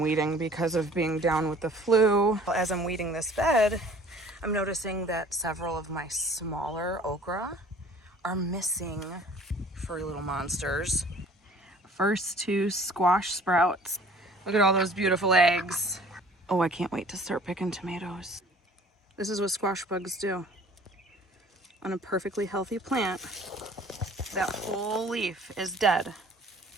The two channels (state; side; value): normal; both; correlation 0.51